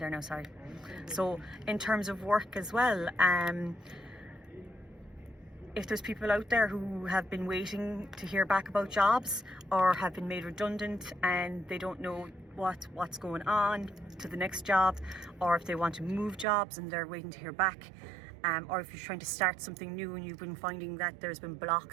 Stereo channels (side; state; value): left; drops out; at 16.4 s